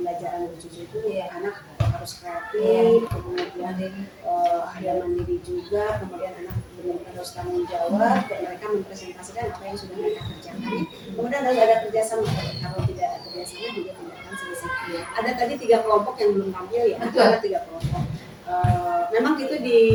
Bu Cucu itu anak harus kreatif, kemudian ada mandiri juga, kemudian anak benar-benar harus tanggung jawab, mereka mempresentasikan apa yang sudah mereka kerjakan. Kemudian harus ada kerjasama, kalau tidak ada kerjasama juga tidak akan selesai. Ada tadi 3 kelompok yang belum tampil ya, ada 3 kelompok. Memang itu di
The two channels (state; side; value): identical; both; correlation 1.00